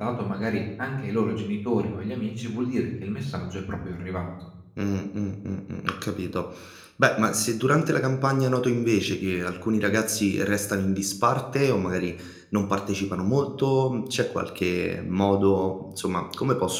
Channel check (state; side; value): identical; both; correlation 1.00